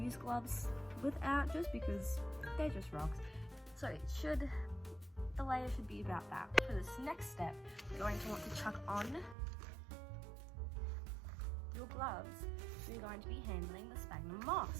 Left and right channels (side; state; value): left; drops out; at 9.3 s